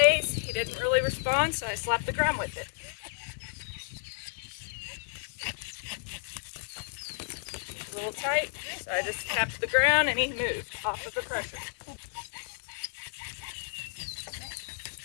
He didn't really respond, so I slapped the ground with it. A little tight, so I just tapped the ground and he moved off of the pressure.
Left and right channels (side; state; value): right; silent; digital silence